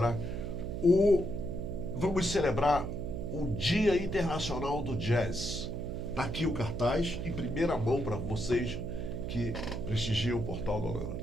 vamos celebrar o Dia Internacional do Jazz. Tá aqui o cartaz, em primeira mão para vocês que prestigiam o Portal da Holanda.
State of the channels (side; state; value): right; noise; hum, 5 dB below the sound